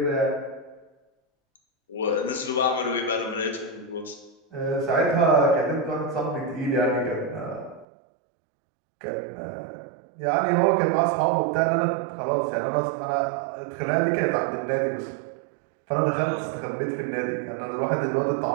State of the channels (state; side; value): drops out; left; at 7.9 s